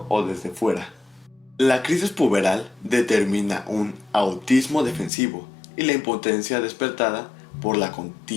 o desde fuera. La crisis puberal determina un autismo defensivo y la impotencia despertada por la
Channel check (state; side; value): drops out; right; at 5.1 s